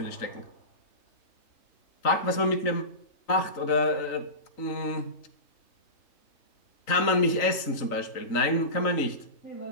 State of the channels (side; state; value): right; late; 3.8 ms